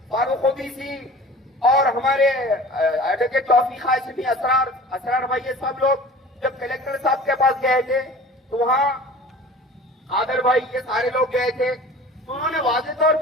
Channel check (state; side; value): normal; both; correlation 0.42